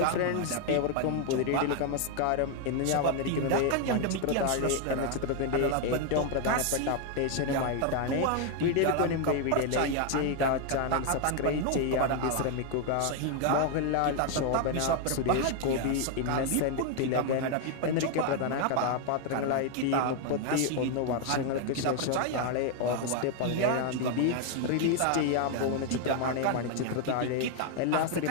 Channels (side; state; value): both; different; correlation 0.00